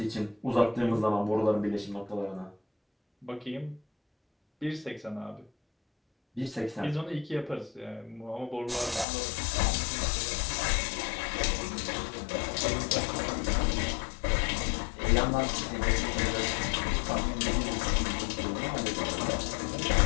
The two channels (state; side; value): drops out; right; at 9.1 s